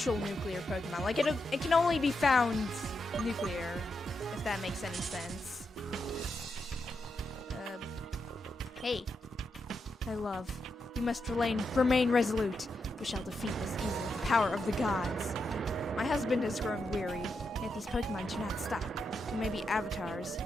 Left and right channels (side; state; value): both; normal; correlation 0.84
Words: nuclear Pokemon. Like it can only be found nuclear, if that makes any sense. Hey, my love, you must remain resolute. We shall defeat this evil with the power of the gods. My husband has grown weary, yet these Pokemon do not stop. We may be avatars,